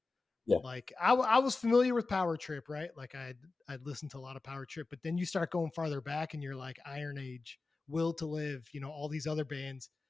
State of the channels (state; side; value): quieter; right; 3.7 dB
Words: Like, I was familiar with Power Trip, right? Like, I'd listened to a lot of Power Trip, but then you start going farther back, and you're like Iron Age, Will to Live, all these other bands.